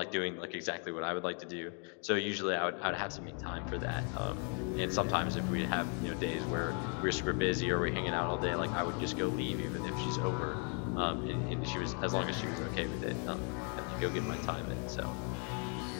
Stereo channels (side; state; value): right; quieter; 39.8 dB